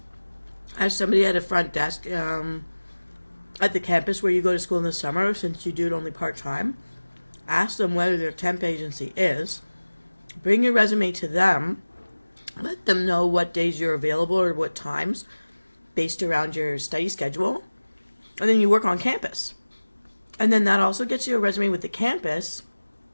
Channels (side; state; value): both; inverted; correlation -1.00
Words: as somebody at a front desk at the campus where you go to school in the summer, since you do it only part time, ask them whether their temp agency is. Bring your resume to them. Let them know what days you're available or what times, based around your study schedule, and then you work on campus. And then that also gets you a resume with the campus.